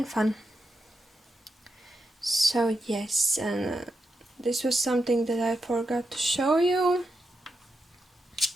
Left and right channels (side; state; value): both; normal; correlation 0.86